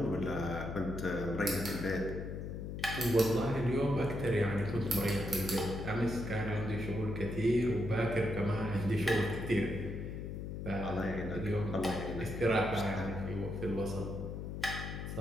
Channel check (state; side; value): noise; left; hum, 6 dB below the sound